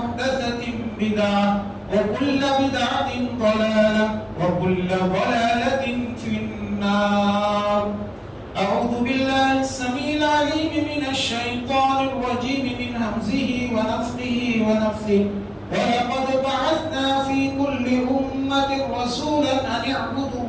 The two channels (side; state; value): both; identical; correlation 1.00